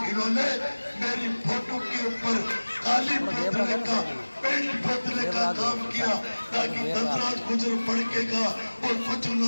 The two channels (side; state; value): both; inverted; correlation -1.00